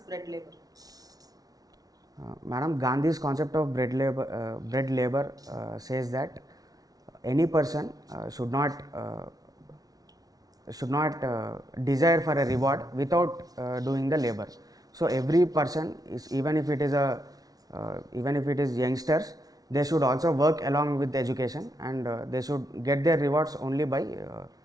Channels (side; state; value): left; late; 0.18 ms